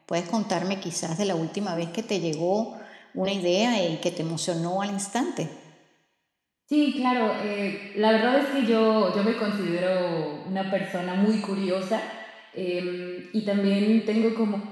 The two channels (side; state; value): both; identical; correlation 1.00